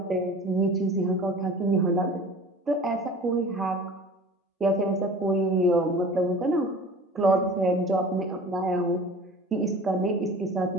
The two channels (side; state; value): both; normal; correlation 0.42